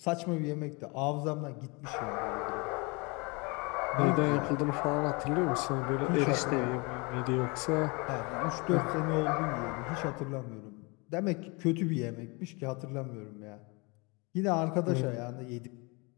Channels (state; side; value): quieter; right; 28.6 dB